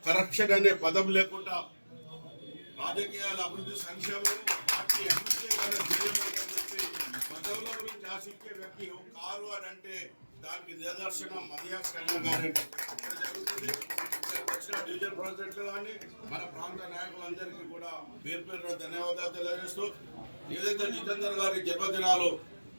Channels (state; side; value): inverted; both; correlation -1.00